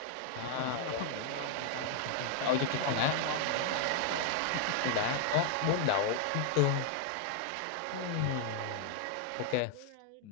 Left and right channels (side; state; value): both; different; correlation -0.01